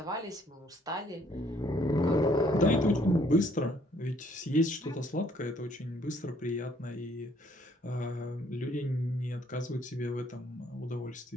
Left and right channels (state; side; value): normal; both; correlation 0.64